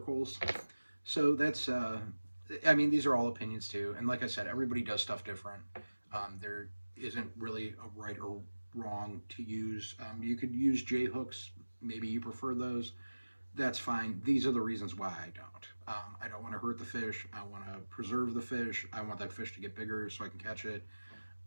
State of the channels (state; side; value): inverted; both; correlation -1.00